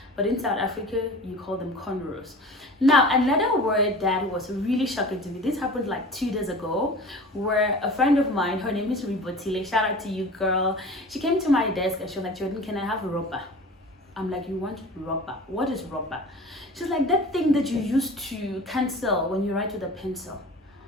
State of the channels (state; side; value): normal; both; correlation 0.39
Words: But in South Africa, you call them cornrows. Now, another word that was really shocking to me. This happened like 2 days ago, where a friend of mine, her name is Ribotile. Shout out to you, girl. She came to my desk and she was like, Jordan, can I have a rubber? I'm like, you want rubber? What is rubber? She's like, that thing that you use to cancel when you write with a pencil.